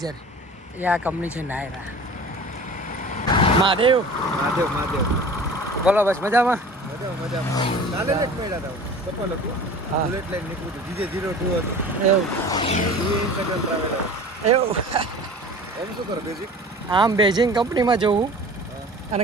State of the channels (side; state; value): both; normal; correlation 0.41